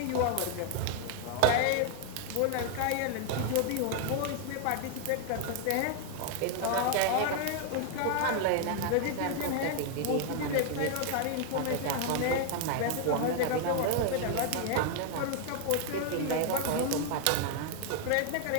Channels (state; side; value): different; both; correlation 0.00